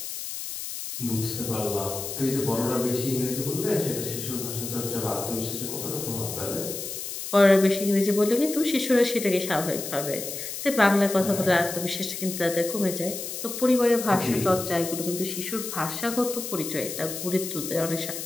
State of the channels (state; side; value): noise; left; hiss, 7 dB below the sound